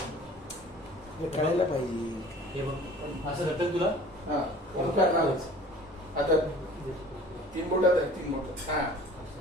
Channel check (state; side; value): normal; both; correlation 0.46